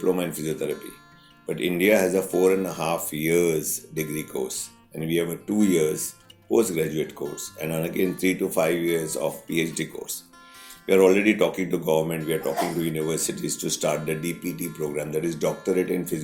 in physiotherapy, but India has a 4.5 years degree course, and we have a 2 years postgraduate course, and again 3 to 5 years of PhD course. We are already talking to government, we are talking to universities to start the DPT program, that is Doctorate in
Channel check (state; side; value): identical; both; correlation 1.00